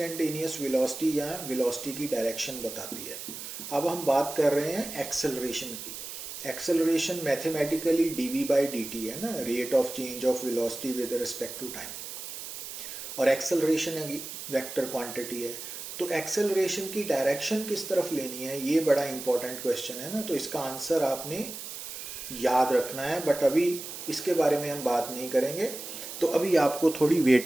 वेलोसिटी या वेलोसिटी की डायरेक्शन बताती है। अब हम बात कर रहे हैं एक्सेलरेशन की। Acceleration mathematically dv by dt है ना, rate of change of velocity with respect to time, और एक्सेलरेशन वेक्टर क्वांटिटी है। तो एक्सेलरेशन की डायरेक्शन किस तरफ लेनी है, ये बड़ा इंपॉर्टेंट क्वेश्चन है ना। तो इसका आंसर आपने याद रखना है, बट अभी इसके बारे में हम बात नहीं करेंगे, तो अभी आपको थोड़ी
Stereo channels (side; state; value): right; noise; hiss, 9 dB below the sound